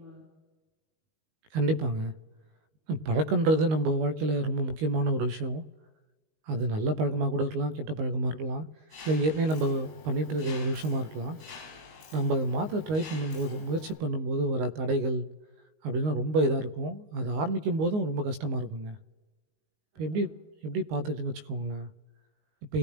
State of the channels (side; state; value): left; late; 19 ms